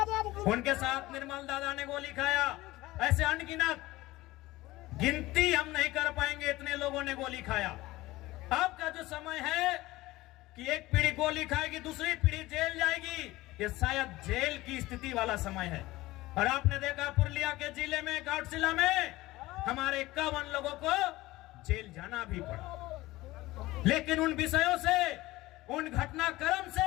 उनके साथ निर्मल दादा ने गोली खाया। ऐसे अनगिनत, गिनती हम नहीं कर पाएंगे, इतने लोगों ने गोली खाया। अब का जो समय है कि एक पीढ़ी गोली खाएगी, दूसरी पीढ़ी जेल जाएगी, ये शायद जेल की स्थिति वाला समय है। और आपने देखा पुरुलिया के जिले में, घाटशिला में हमारे 51 लोगों को जेल जाना भी पड़ा। लेकिन उन विषयों से, उन घटनाक्रम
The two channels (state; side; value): quieter; right; 18.6 dB